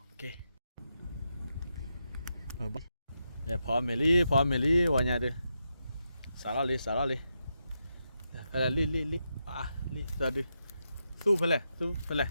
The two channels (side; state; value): both; inverted; correlation -0.85